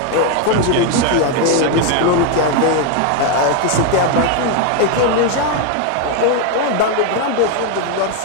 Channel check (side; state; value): both; different; correlation 0.01